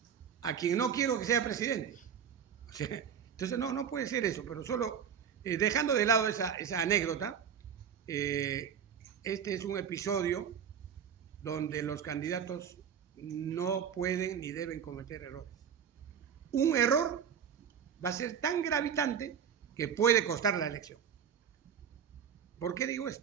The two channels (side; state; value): left; quieter; 7.9 dB